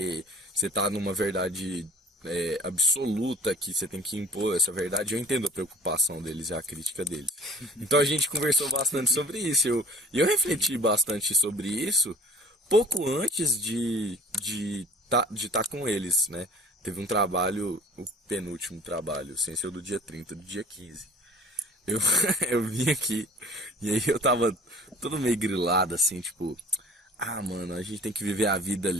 você está numa verdade absoluta, que você tem que impor essa verdade. Eu entendo a preocupação deles e a crítica deles. Então a gente conversou bastante sobre isso. E eu refleti bastante sobre isso pouco antes de estar com eles, né? Teve um trabalho, o penúltimo trabalho, sem ser o do dia 30, do dia 15. Eu vim aqui e aí eu tava todo meio grilado, assim, tipo... mano, a gente tem que viver a vida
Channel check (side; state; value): both; normal; correlation 0.49